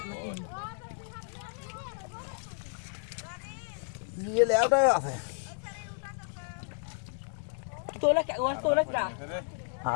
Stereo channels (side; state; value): right; silent; digital silence